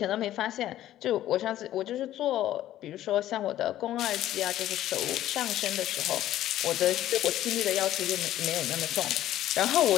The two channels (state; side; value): quieter; right; 13.2 dB